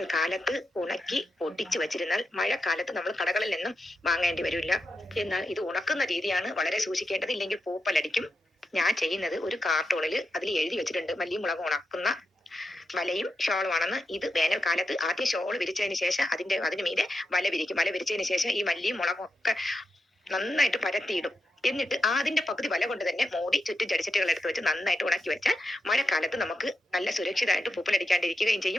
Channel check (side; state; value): both; normal; correlation 0.88